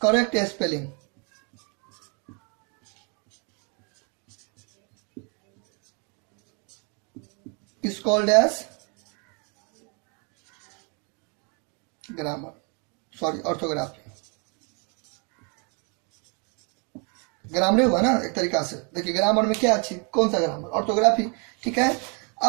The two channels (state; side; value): quieter; left; 35.4 dB